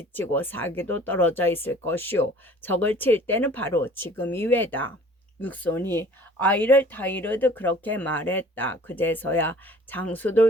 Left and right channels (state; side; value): normal; both; correlation 0.49